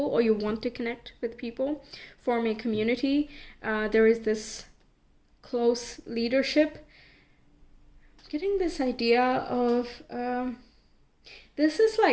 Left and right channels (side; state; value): both; identical; correlation 1.00